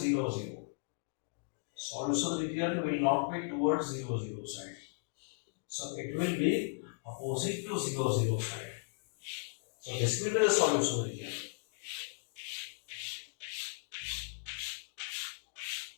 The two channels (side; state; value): right; silent; digital silence